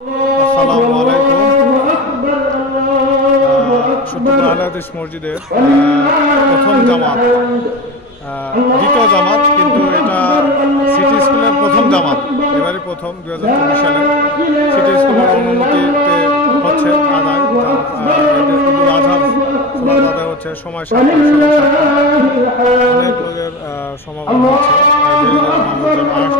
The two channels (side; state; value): both; normal; correlation 0.27